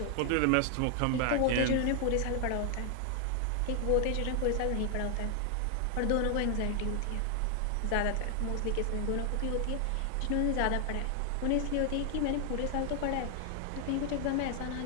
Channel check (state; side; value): different; both; correlation 0.00